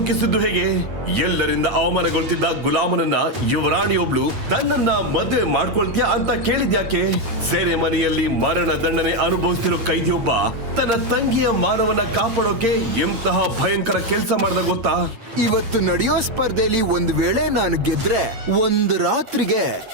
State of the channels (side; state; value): left; late; 8.8 ms